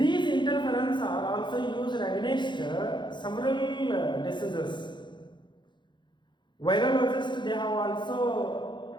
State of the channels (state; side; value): late; right; 0.22 ms